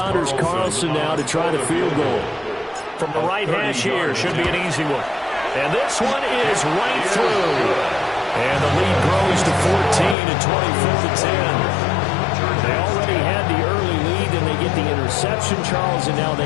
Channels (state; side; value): drops out; right; at 10.2 s